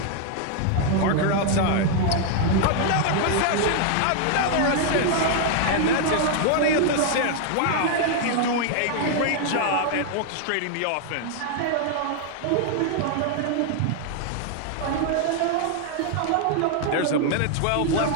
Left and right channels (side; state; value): both; different; correlation 0.00